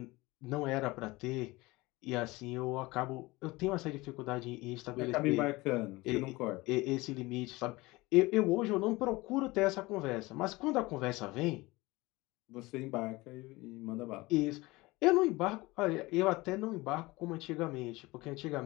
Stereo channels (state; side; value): quieter; right; 21.5 dB